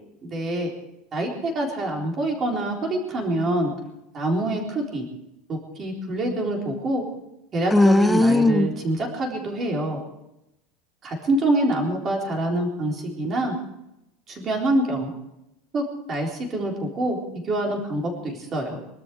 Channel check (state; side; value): normal; both; correlation 0.69